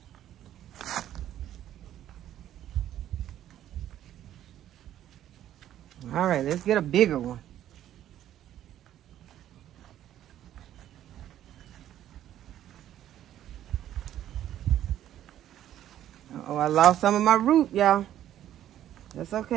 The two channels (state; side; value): quieter; left; 11.8 dB